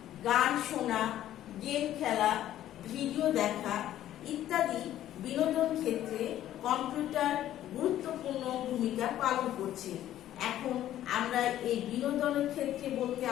গান শোনা, গেম খেলা, ভিডিও দেখা ইত্যাদি বিনোদন ক্ষেত্রে কম্পিউটার গুরুত্বপূর্ণ ভূমিকা পালন করছে। এখন আমরা এই বিনোদনের ক্ষেত্রে বলতে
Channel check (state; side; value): quieter; right; 12.5 dB